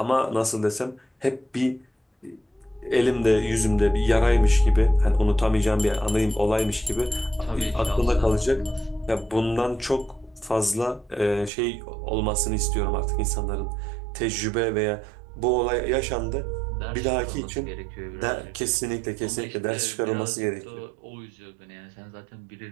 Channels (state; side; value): drops out; left; at 11.5 s